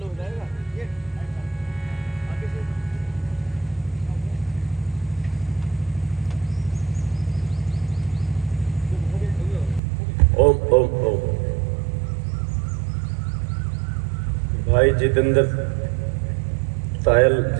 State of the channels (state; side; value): drops out; left; at 9.8 s